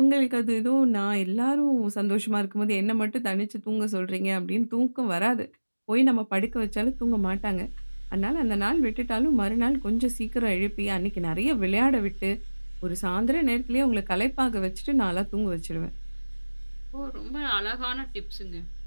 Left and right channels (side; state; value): both; inverted; correlation -1.00